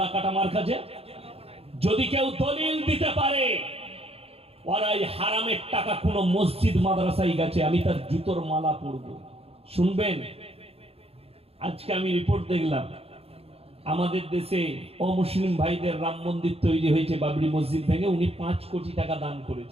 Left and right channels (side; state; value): left; late; 0.29 ms